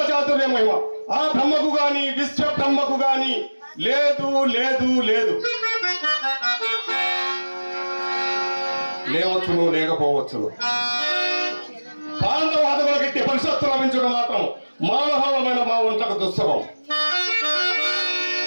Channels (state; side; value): inverted; both; correlation -1.00